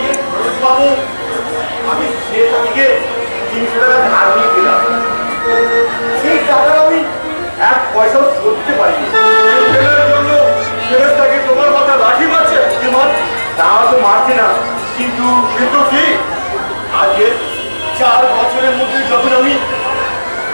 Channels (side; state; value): both; inverted; correlation -1.00